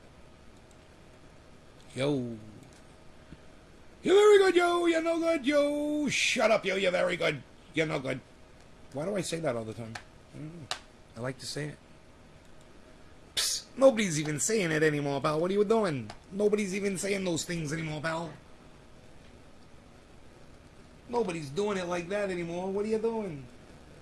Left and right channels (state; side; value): identical; both; correlation 1.00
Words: Yo. You're very good, yo, you're no good, yo. Shut up, yo, you're very good, you're no good. Why do I say that all the time? I don't know. I like to say it. Psst, nobody's even saying it anymore, pal. What are you doing? Nobody's even saying those things anymore, pal. Nobody's doing it like that anymore. What are you doing?